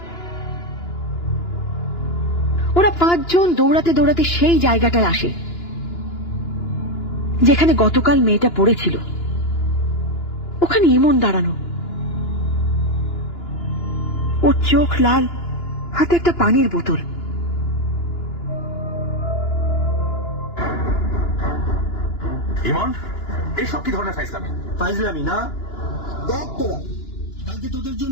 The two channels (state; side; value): late; right; 2.9 ms